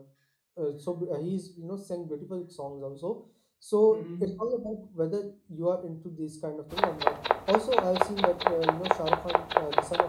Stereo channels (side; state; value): both; identical; correlation 1.00